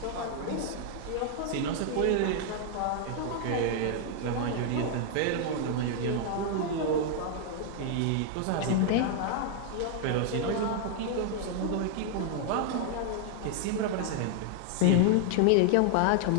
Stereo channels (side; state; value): both; different; correlation 0.00